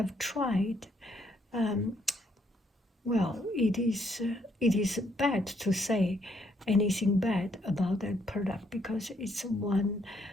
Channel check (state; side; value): normal; both; correlation 0.71